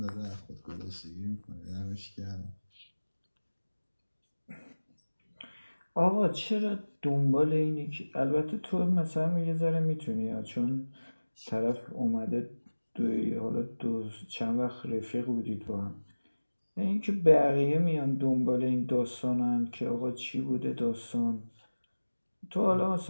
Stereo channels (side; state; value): both; inverted; correlation -1.00